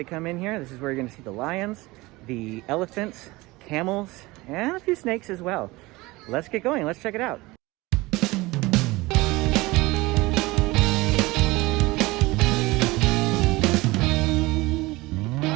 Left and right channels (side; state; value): left; quieter; 21.3 dB